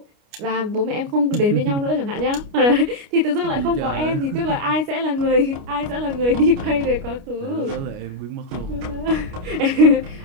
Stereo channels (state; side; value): late; left; 29 ms